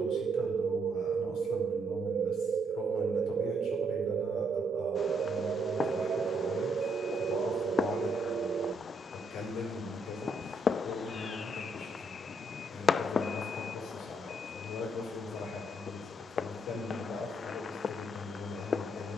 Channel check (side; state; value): both; normal; correlation 0.73